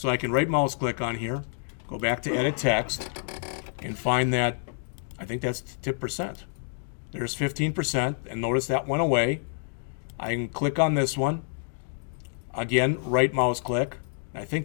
I can right mouse click on here, go back to edit text, and find that, I think that's tip percent. There's 15%, and notice that went away. I can click on this one. Again, right mouse click. I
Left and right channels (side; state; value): right; silent; digital silence